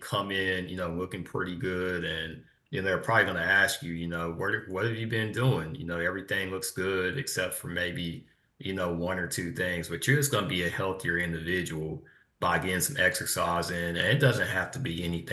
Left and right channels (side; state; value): both; identical; correlation 1.00